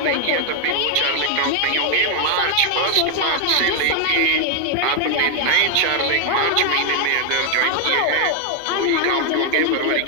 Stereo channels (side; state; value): both; different; correlation 0.00